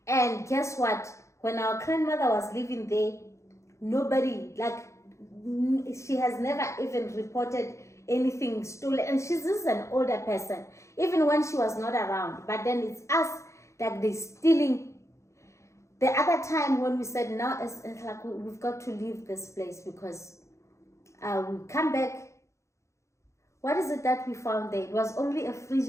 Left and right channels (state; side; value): late; right; 0.14 ms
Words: And guess what? When our grandmother was living there, nobody, like, she has never even reported anything stolen. And she's just an older person, even when she was not around. But then it's us that they're stealing. The other time when we said, now it's like we've got to leave this place, because we come back. What is it that we found there? It was only a fridge